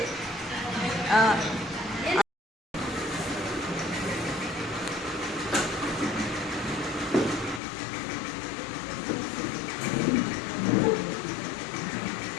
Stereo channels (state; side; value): drops out; right; at 7.6 s